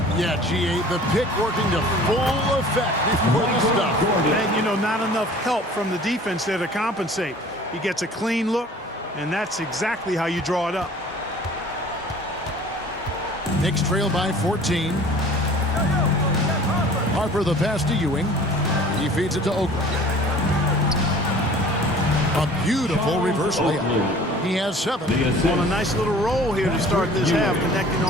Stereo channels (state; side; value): normal; both; correlation 0.47